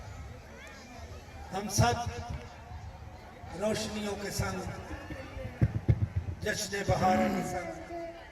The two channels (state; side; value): identical; both; correlation 1.00